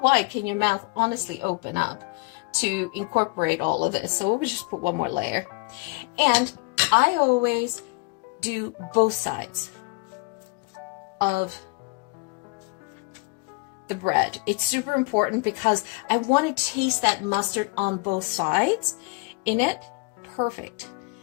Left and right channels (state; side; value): quieter; right; 30.0 dB